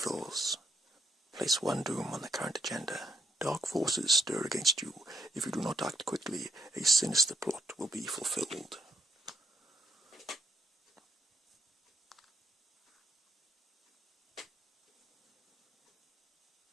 Place 1 doom on the current agenda. Dark forces stir against you. If you do not act quickly, a sinister plot will be fulfilled.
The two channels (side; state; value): both; normal; correlation 0.74